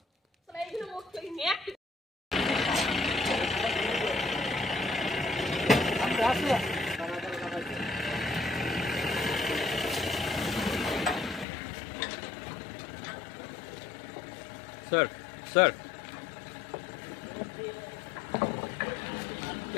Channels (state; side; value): drops out; right; at 11.5 s